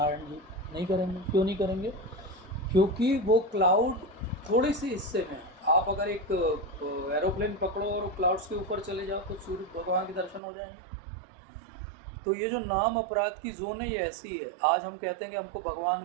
जी? नहीं करेंगे। क्यों नहीं करेंगे? क्योंकि वो क्लाउड थोड़े से हिस्से में, आप अगर एक एरोप्लेन पकड़ो और क्लाउड्स के ऊपर चले जाओ तो सूर्य भगवान के दर्शन हो जाएंगे। तो ये जो नाम अपराध की जोन है ये ऐसी है। आज हम कहते हैं कि हमको भगवान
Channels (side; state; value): left; drops out; at 10.4 s